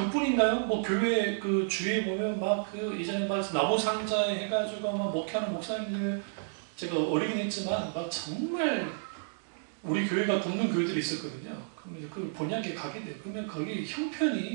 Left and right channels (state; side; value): silent; left; digital silence